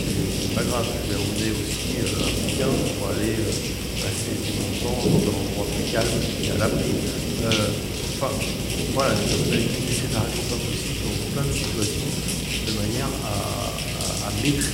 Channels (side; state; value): both; identical; correlation 1.00